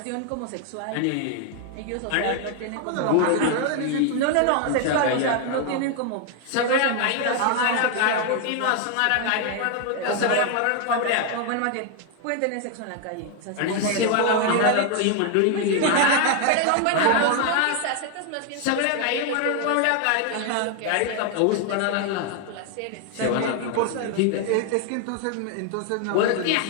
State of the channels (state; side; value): different; both; correlation 0.00